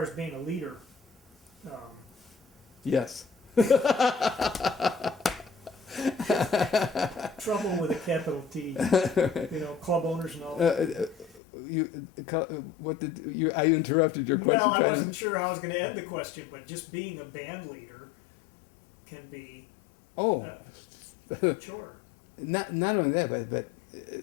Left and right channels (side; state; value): right; drops out; at 11.4 s